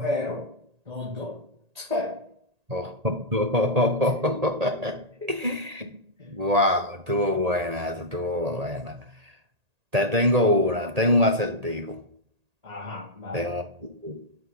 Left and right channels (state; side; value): late; left; 1.8 ms